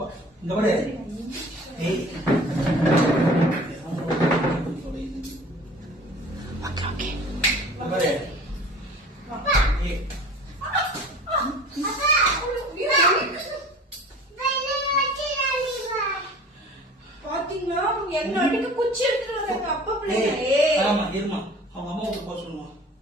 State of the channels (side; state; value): both; normal; correlation 0.45